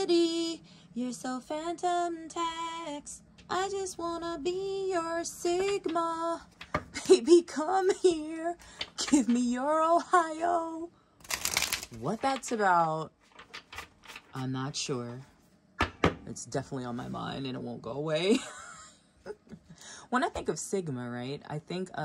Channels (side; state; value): both; identical; correlation 1.00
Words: You're so phantom tax. I just wanna be your Sigma. Baby, come here. Give me your Ohio. What that's about, I'm not sure. It's definitely on my mind and it won't go away. When I think of Sigma, right, I think